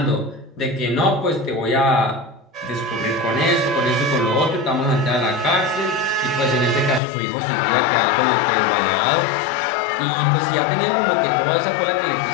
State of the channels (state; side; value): drops out; right; at 7.0 s